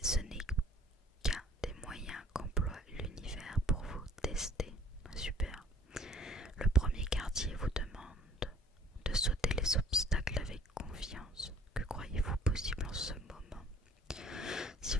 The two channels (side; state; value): both; normal; correlation 0.54